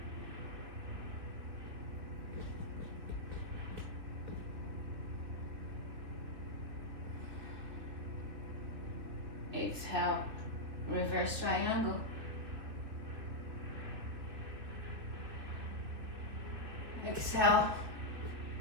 Exhale, reverse triangle. Exhale.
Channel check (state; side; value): late; left; 3.0 ms